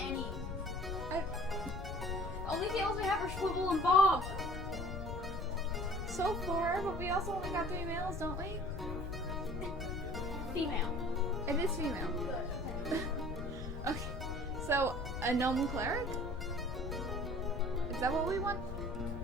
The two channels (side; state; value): left; noise; rumble, 6 dB below the sound